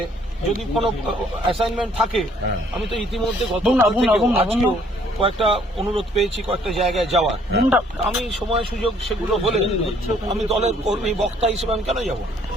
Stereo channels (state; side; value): normal; both; correlation 0.62